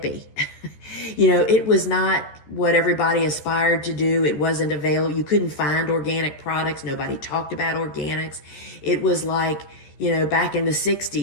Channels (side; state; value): right; late; 13 ms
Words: It was not what everybody aspired to do. It wasn't available. You couldn't find organic products. Nobody talked about organics. It was like, back in the